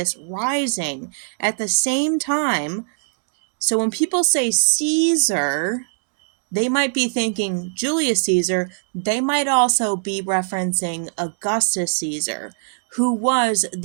rising at the same time. So when people say Caesar, they might be thinking Julius Caesar. They might also be referencing Augustus Caesar, who was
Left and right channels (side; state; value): left; silent; digital silence